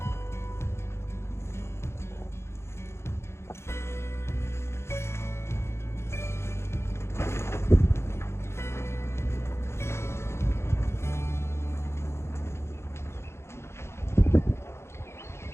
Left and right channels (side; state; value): right; late; 0.13 ms